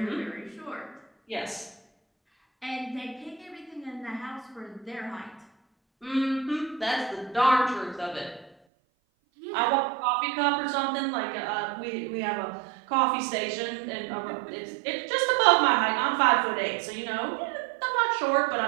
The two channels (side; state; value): left; drops out; at 8.5 s